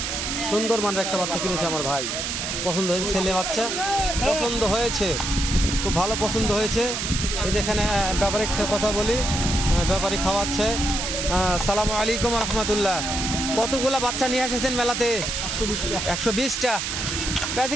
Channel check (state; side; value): noise; right; hiss, 2 dB below the sound